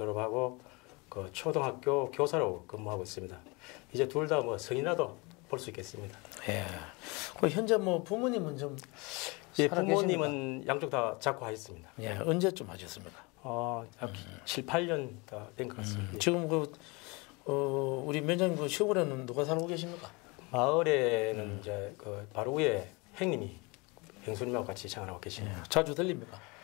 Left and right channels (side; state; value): right; quieter; 27.3 dB